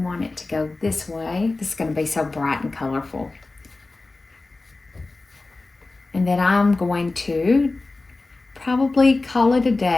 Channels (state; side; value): quieter; right; 3.3 dB